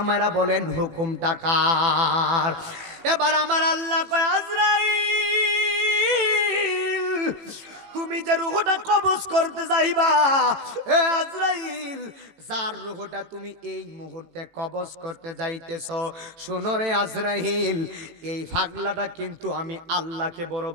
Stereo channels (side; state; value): left; late; 18 ms